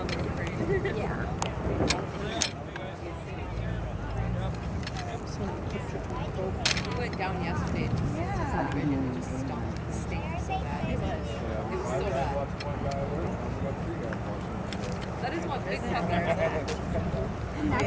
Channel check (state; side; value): identical; both; correlation 1.00